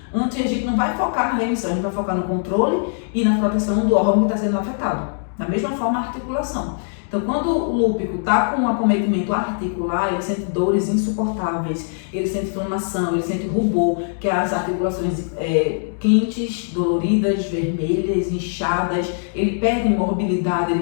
Antes, a gente não vai focar na remissão, a gente vai focar no controle e na proteção do órgão que está sendo afetado. Da mesma forma, a articulação. Então, quando o lúpico está com um acometimento articular, ele sente dores insuportáveis, ele sente inflamação, ele sente rubor, que é as articulações quentes, doloridas, vermelhas, inchadas, ele perde mobilidade,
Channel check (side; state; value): right; silent; digital silence